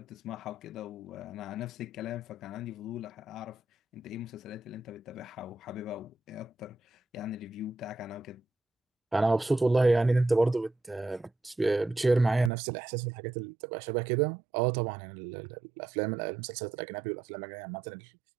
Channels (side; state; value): left; drops out; at 12.5 s